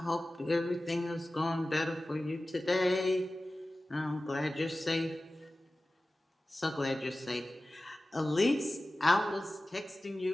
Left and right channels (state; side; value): normal; both; correlation 0.96